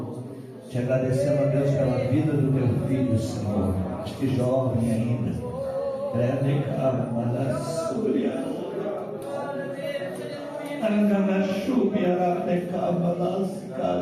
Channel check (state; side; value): identical; both; correlation 1.00